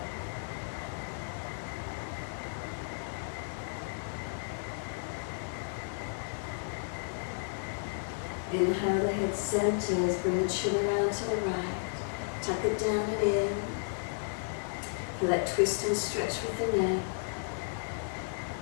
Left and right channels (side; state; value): right; silent; digital silence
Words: Inhale, the head centers, bring the chin around to the right, tuck it down and in. Feel that twist and stretch with the neck.